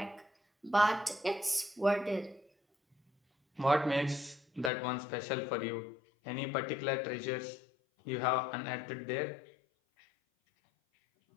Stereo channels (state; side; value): drops out; right; at 4.7 s